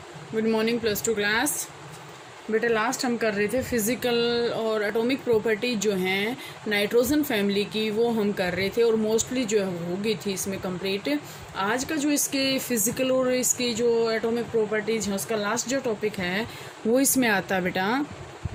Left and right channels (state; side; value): identical; both; correlation 1.00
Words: Good morning plus two class. बेटा last हम कर रहे थे फिज़िकल और एटॉमिक प्रॉपर्टी जो हैं नाइट्रोजन फैमिली की, वो हम कर रहे थे और मोस्टली जो है हो गई थी इसमें कंप्लीट। आज का जो इसके फिज़िकल और इसकी जो एटॉमिक प्रॉपर्टीज़ हैं उसका लास्ट जो टॉपिक है वो इसमें आता है बेटा